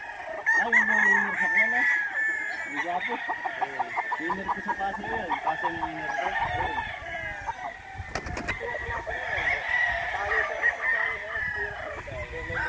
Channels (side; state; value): both; identical; correlation 1.00